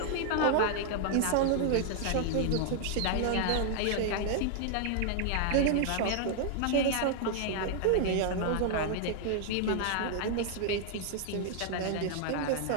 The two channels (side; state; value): both; different; correlation 0.00